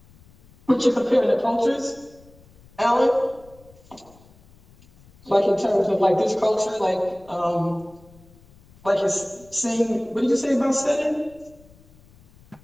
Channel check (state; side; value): noise; left; rumble, 27 dB below the sound